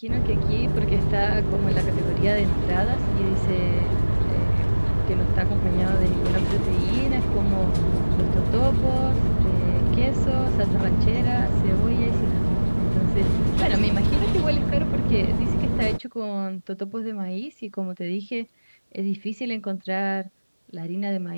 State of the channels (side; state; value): both; inverted; correlation -1.00